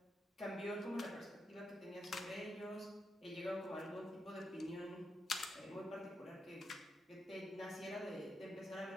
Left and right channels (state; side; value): normal; both; correlation 0.84